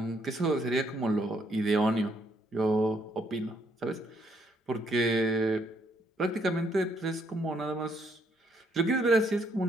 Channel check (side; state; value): both; normal; correlation 0.71